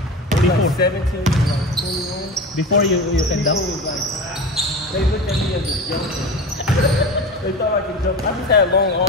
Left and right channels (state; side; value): normal; both; correlation 0.30